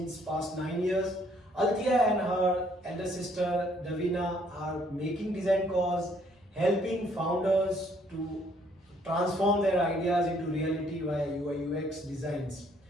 past 9 years. Althea and her elder sister Davina are making Designcoz, helping founders to transform their ideas into reality via UI/UX designs.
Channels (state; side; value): normal; both; correlation 0.65